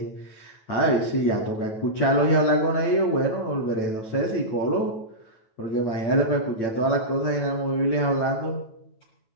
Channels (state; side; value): late; right; 9.1 ms